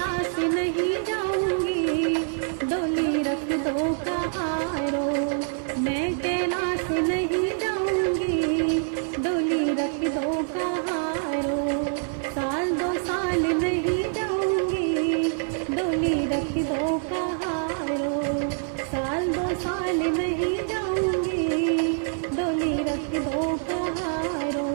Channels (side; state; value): left; silent; 61 dB below the other